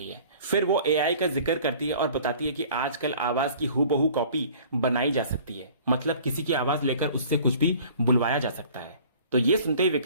है। फिर वो एआई का जिक्र करती है और बताती है कि आजकल आवाज की हूबहू कॉपी बनाई जा सकती है, मतलब किसी की आवाज लेकर उससे कुछ भी बुलवाया जा सकता है। तो ये सुनते ही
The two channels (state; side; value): inverted; both; correlation -0.49